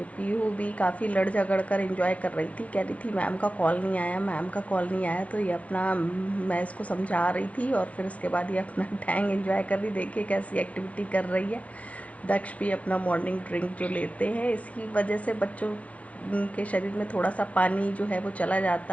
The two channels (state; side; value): late; right; 0.065 ms